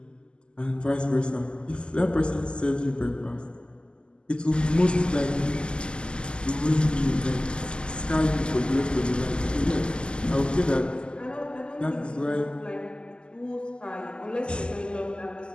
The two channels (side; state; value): right; late; 0.049 ms